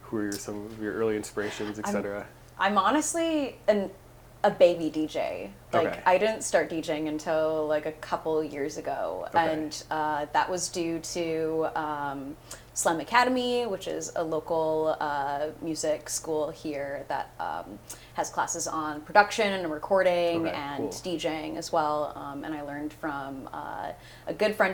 Who were some of your early inspirations, etc.? I'm honestly a baby DJ. Like, I didn't start DJing until like a couple years ago. And that was due to SYM Academy, which is a local music school here that has classes on production and recording and DJing as well. And I learned from a good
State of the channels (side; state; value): both; identical; correlation 1.00